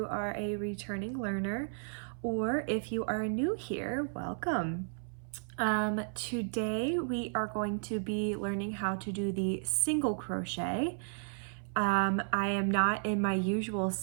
are a returning learner or if you are new here, welcome. Today we are going to be learning how to do the single crochet. I am not in my usual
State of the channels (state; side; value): silent; left; 55 dB below the other